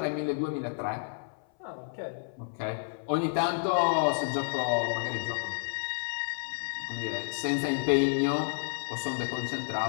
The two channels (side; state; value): right; silent; 57 dB below the other